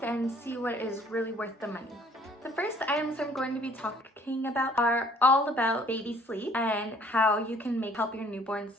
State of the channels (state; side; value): normal; both; correlation 0.58